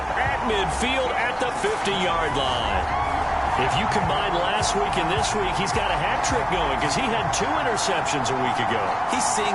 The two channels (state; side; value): identical; both; correlation 1.00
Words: at midfield at the 50-yard line. If you combine last week and this week, he's got a hat trick going because he had 2 interceptions a week ago. He's seeing